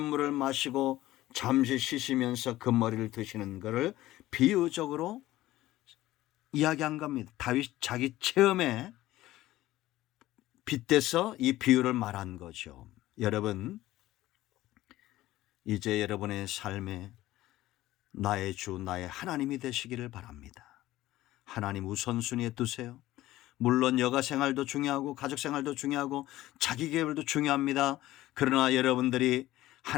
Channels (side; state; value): right; quieter; 15.9 dB